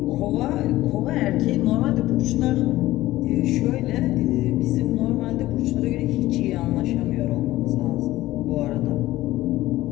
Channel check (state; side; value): quieter; right; 16.4 dB